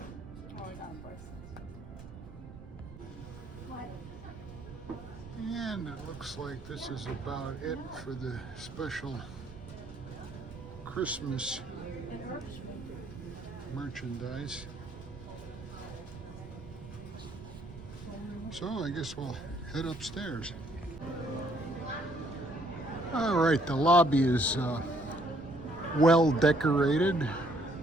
Oh, I got bracelets. And it looks like this is about it for the special Christmas merchandise. So I guess we'll head upstairs. All right, the lobby is well decorated.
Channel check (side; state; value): right; noise; rumble, 15 dB below the sound